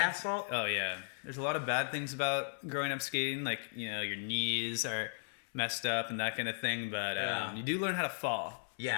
asphalt. Oh yeah. There's a lot of bad things about growing up skating, like your knees are messed up and that kind of thing. But Yeah. you do learn how to fall. Yeah.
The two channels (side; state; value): right; silent; 54 dB below the other